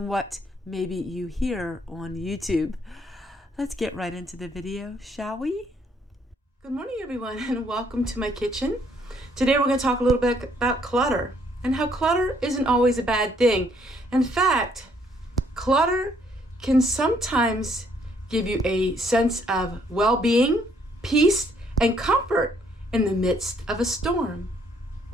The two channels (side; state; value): both; normal; correlation 0.67